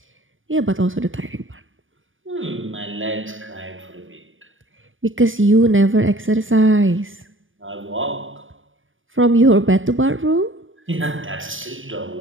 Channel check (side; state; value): left; late; 0.57 ms